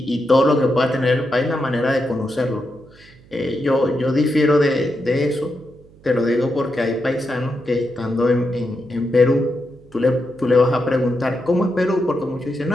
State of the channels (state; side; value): noise; right; hum, 26 dB below the sound